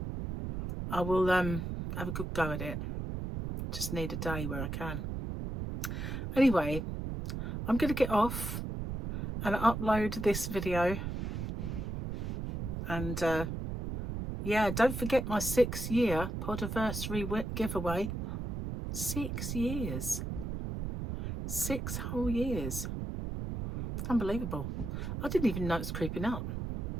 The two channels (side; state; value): right; noise; rumble, 4 dB below the sound